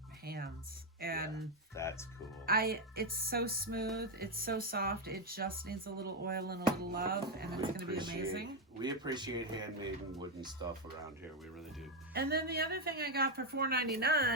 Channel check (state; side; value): normal; both; correlation 0.05